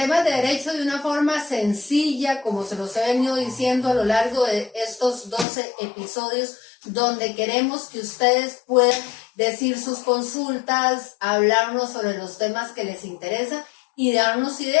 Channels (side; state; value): right; drops out; at 5.5 s